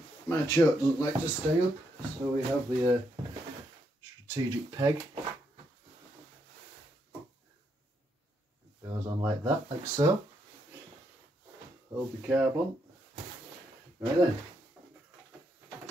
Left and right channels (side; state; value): both; normal; correlation 0.78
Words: my choke doesn't like to stay up, so we have the strategic peg. It goes on like that, like so. Hold the carb on. Right then,